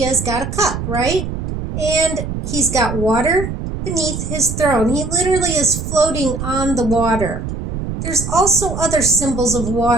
has got a cup, right? And he's got water beneath his throne. He literally is floating on the water. There's also other symbols of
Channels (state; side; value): noise; right; rumble, 5 dB below the sound